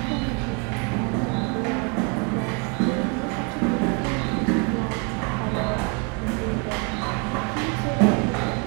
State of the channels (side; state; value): left; quieter; 32.8 dB